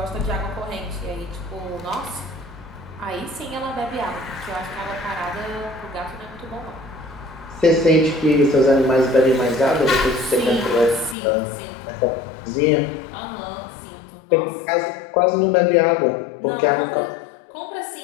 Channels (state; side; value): drops out; right; at 11.2 s